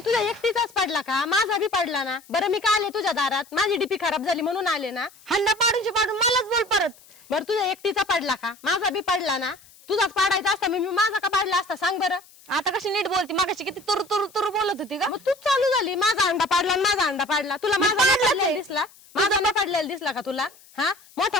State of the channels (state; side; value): noise; left; hiss, 25 dB below the sound